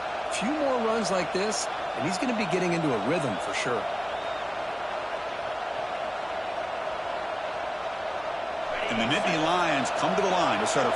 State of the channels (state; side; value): identical; both; correlation 1.00